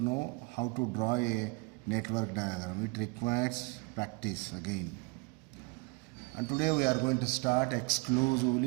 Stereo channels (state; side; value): quieter; left; 28.4 dB